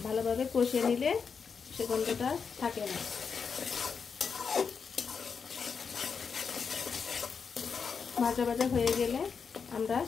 ভালোভাবে কষিয়ে নিলে সে গন্ধটা থাকে না। ভাজা ভাজা হয়ে গেলে আমরা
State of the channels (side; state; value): right; quieter; 5.9 dB